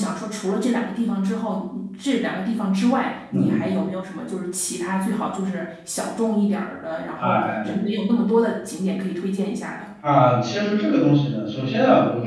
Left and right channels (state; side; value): identical; both; correlation 1.00